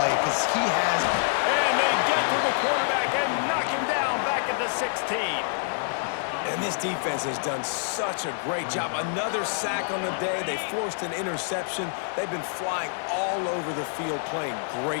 because he has... And they get to the quarterback and knock him down back at the 16. And this defense has done such a great job. Another sack on the day. They forced an interception. They've been flying all over the field playing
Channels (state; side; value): silent; right; digital silence